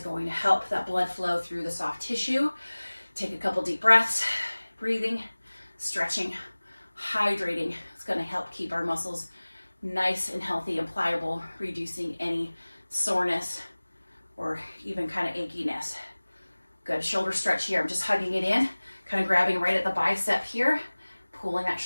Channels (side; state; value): both; inverted; correlation -1.00